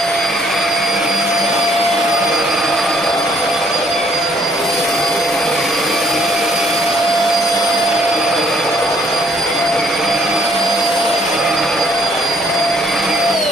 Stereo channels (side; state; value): both; normal; correlation 0.65